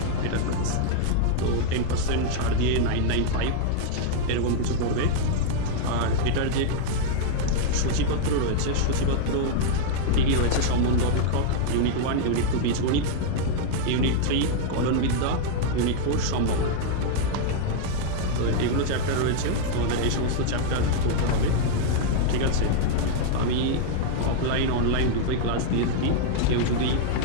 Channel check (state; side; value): different; both; correlation -0.01